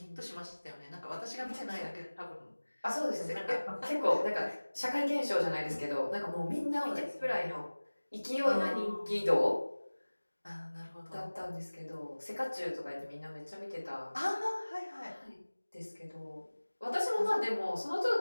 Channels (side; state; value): both; inverted; correlation -1.00